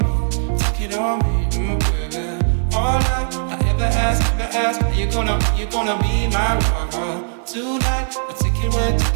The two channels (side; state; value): left; silent; digital silence